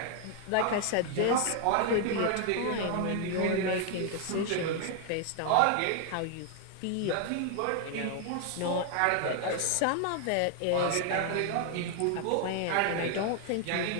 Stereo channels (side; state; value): both; different; correlation 0.00